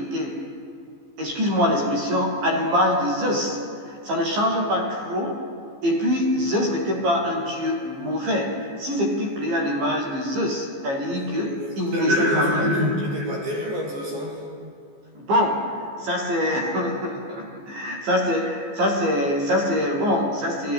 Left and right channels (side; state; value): left; late; 15 ms